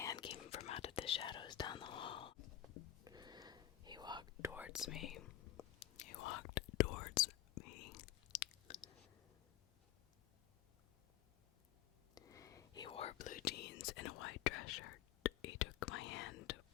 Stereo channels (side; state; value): right; quieter; 13.1 dB